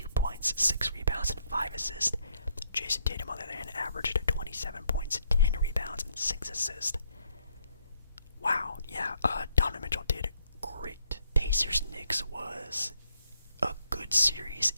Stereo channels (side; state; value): both; inverted; correlation -0.72